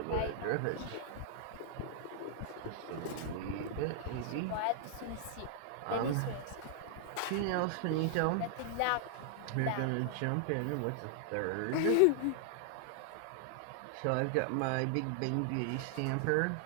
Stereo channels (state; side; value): different; both; correlation -0.01